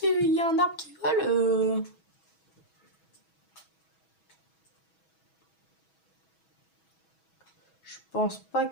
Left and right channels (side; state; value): right; late; 6.2 ms